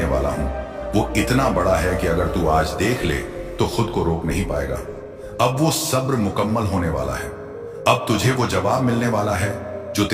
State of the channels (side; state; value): both; identical; correlation 1.00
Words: वाला हूं वो इतना बड़ा है कि अगर तू आज देख ले तो खुद को रोक नहीं पाएगा। अब वो सब्र मुकम्मल होने वाला है। अब तुझे वो जवाब मिलने वाला है जो